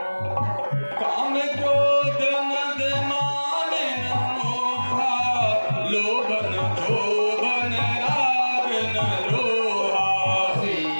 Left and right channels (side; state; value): both; inverted; correlation -1.00